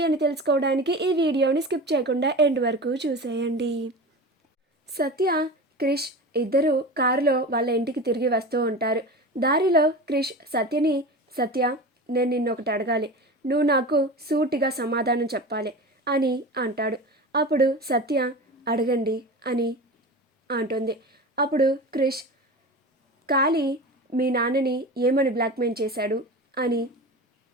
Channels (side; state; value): both; normal; correlation 0.30